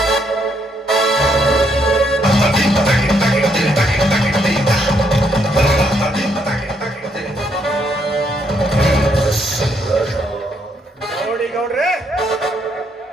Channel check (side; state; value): both; normal; correlation 0.73